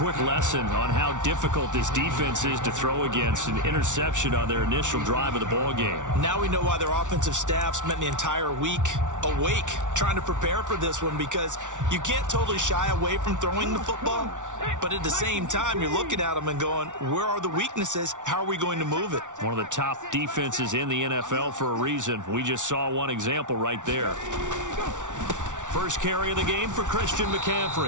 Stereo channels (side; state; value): left; late; 0.86 ms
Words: lesson on how difficult this defense is to throw against. An interception on their initial drive of the ball game. Now we know why their offensive staff spent the entire week awake trying to prepare for this one, because you can't totally shy away from throwing the football, but at the same time you're looking at them and going, where are the weaknesses? How are we going to move it? One of the top defenses in the NFL for a reason. We just saw one example right there. First carry of the game for Christian